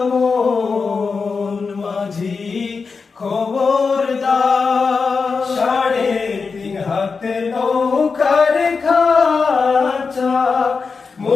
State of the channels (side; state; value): right; quieter; 4.9 dB